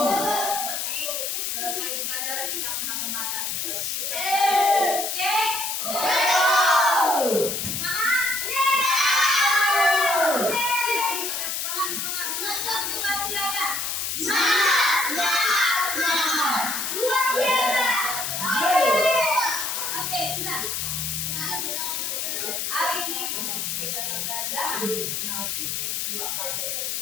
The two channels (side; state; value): left; noise; hiss, 2 dB below the sound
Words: selesai pelajaran kita akan makan. Oke. baca.